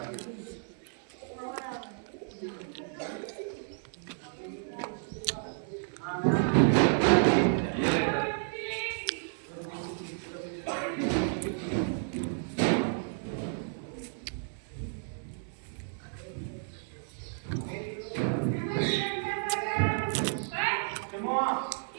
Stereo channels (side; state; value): left; silent; 56 dB below the other